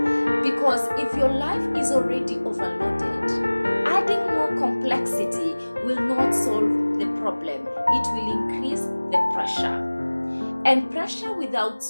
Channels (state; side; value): inverted; both; correlation -1.00